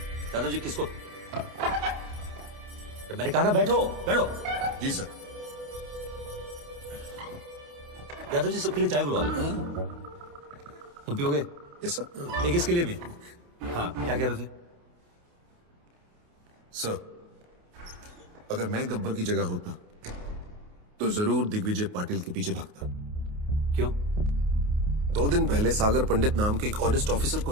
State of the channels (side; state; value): left; late; 28 ms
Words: दादाजी। किसको? मैंने कहा ना बैठो बैठो। जी सर। यादव जी सबके लिए चाय बुलवा दो। तुम पियोगे? Yes sir. एक इसके लिए भी। हाँ क्या कह रहे थे? सर, अगर मैं गब्बर की जगह होता तो जरूर दिग्विजय पाटिल के पीछे भागता। क्यों? 2 दिन पहले सागर पंडित नाम के एक ऑनेस्ट ऑफिसर को